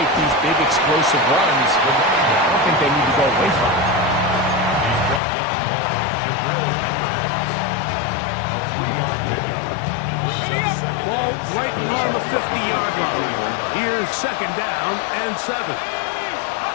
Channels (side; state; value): right; drops out; at 5.2 s